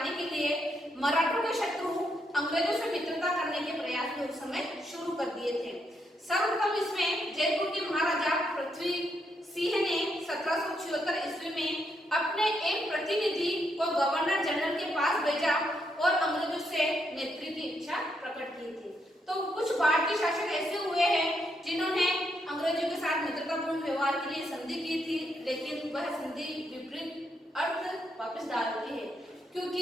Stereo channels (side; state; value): both; normal; correlation 0.78